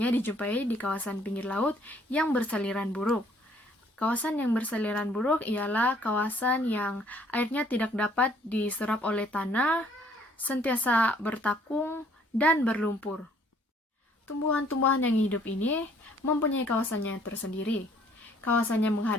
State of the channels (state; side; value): normal; both; correlation 0.61